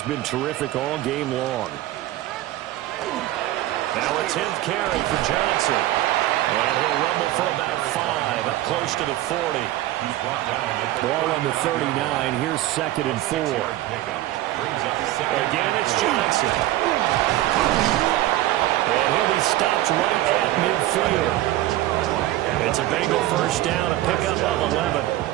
been terrific all game long. Now a 10th carry for Johnson. And he'll rumble for about 5, up close to the 40. Ball on the 39. Here's 2nd and 4. Again, it's Johnson. And he'll be stopped right at midfield. It's a Bengal first down, a pickup of 11. A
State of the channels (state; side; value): quieter; left; 15.3 dB